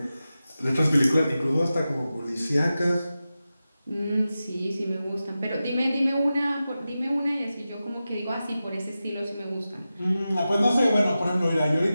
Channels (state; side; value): inverted; both; correlation -0.93